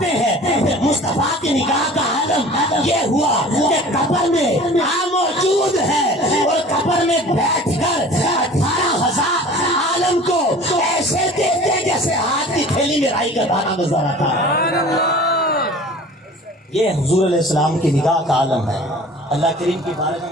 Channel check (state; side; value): normal; both; correlation 0.44